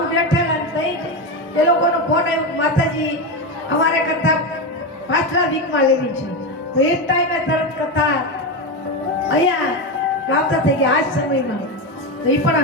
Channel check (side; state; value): both; normal; correlation 0.15